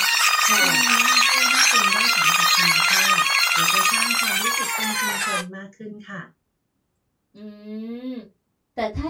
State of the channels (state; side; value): identical; both; correlation 1.00